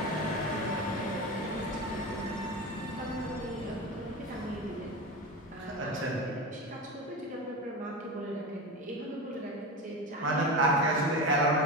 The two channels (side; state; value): both; normal; correlation 0.24